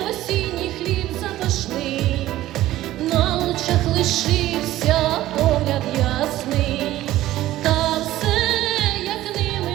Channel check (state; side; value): quieter; left; 15.0 dB